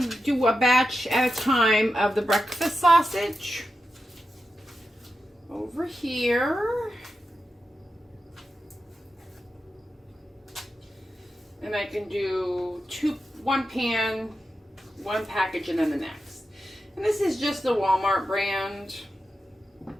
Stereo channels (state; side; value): normal; both; correlation 0.90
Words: do a batch at a time of the breakfast sausage. Over here. And I can do one pan, one package, and then the next. And this is just the Walmart brand.